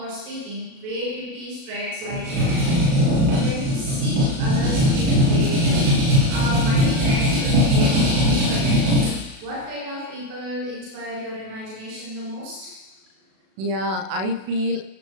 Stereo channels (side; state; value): left; late; 37 ms